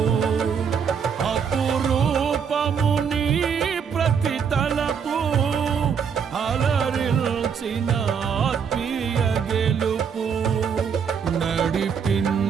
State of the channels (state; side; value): quieter; left; 6.8 dB